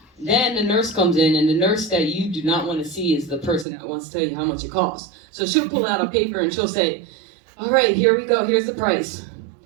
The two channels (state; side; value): drops out; left; at 3.7 s